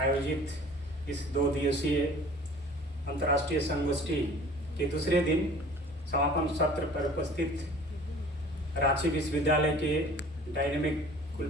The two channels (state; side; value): normal; both; correlation 0.47